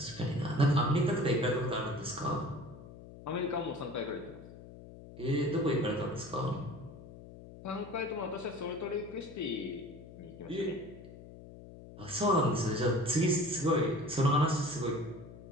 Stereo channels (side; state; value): left; noise; hum, 16 dB below the sound